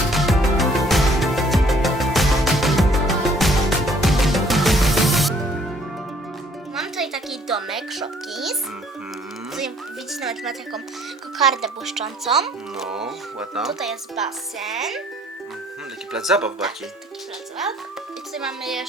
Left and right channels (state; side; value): normal; both; correlation 0.60